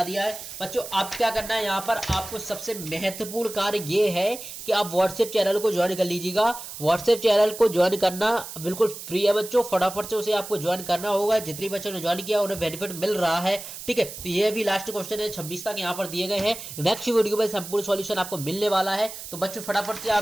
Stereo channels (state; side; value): noise; right; hiss, 11 dB below the sound